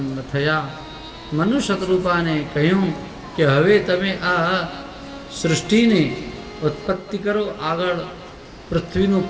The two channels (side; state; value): both; identical; correlation 1.00